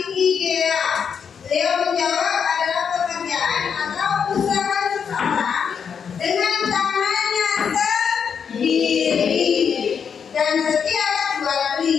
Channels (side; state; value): right; quieter; 6.9 dB